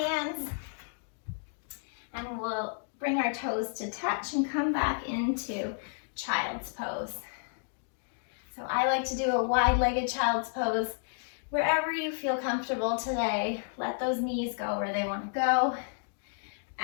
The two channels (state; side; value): silent; right; digital silence